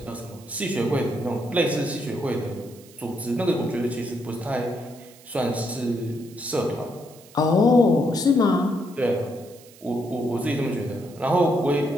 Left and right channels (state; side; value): noise; right; hiss, 23 dB below the sound